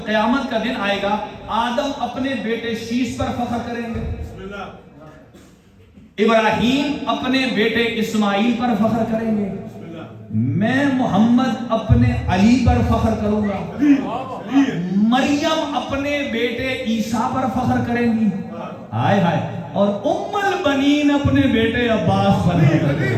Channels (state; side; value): identical; both; correlation 1.00